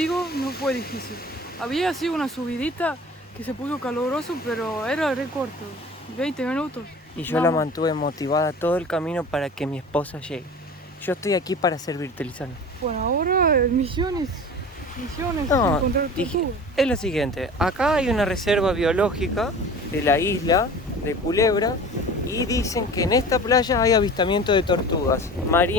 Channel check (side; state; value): both; normal; correlation 0.39